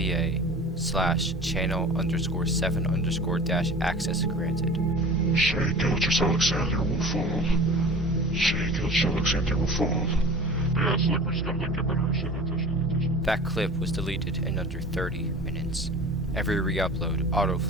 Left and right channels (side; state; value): both; normal; correlation 0.40